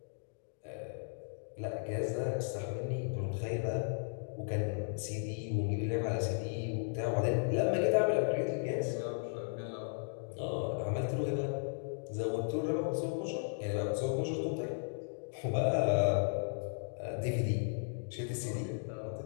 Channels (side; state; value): right; silent; digital silence